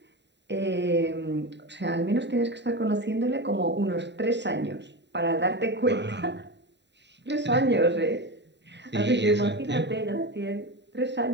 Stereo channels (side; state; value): left; late; 0.51 ms